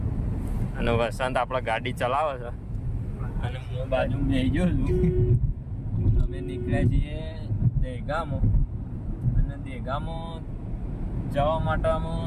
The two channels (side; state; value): both; identical; correlation 1.00